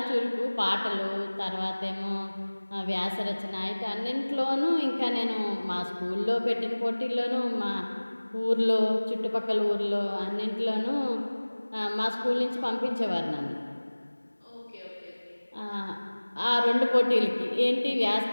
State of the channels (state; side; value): inverted; both; correlation -1.00